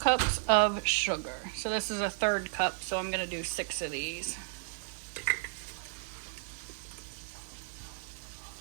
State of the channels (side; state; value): left; silent; digital silence